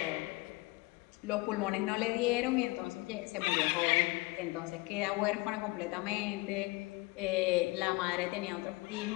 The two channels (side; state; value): right; quieter; 23.3 dB